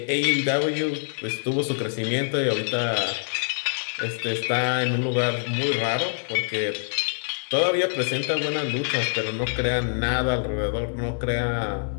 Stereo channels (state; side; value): silent; right; digital silence